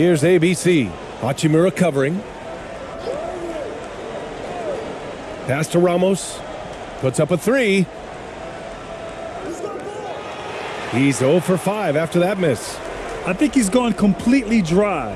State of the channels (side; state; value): both; identical; correlation 1.00